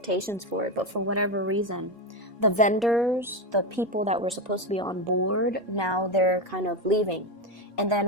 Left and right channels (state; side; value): normal; both; correlation 0.13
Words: for it, but for whatever reason, the vendors, the people that were supposed to be on board, now they're kind of leaving. And